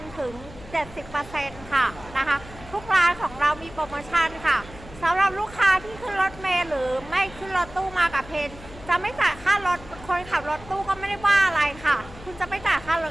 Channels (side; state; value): left; noise; hum, 18 dB below the sound